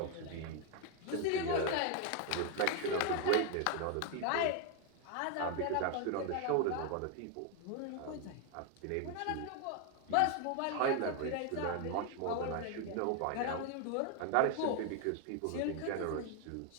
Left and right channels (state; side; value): different; both; correlation 0.01